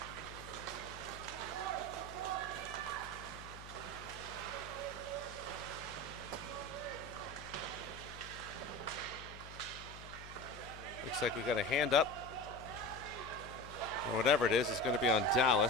Looks like we got a hand up. Or whatever it is going to be on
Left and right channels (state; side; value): noise; left; hum, 15 dB below the sound